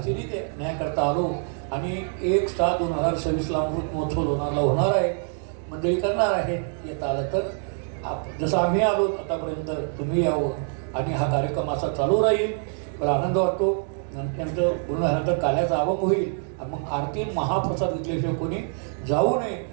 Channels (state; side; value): silent; left; 55 dB below the other